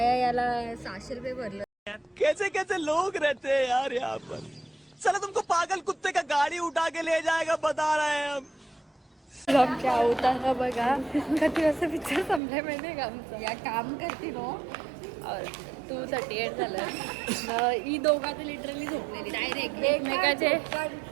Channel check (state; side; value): drops out; left; at 12.4 s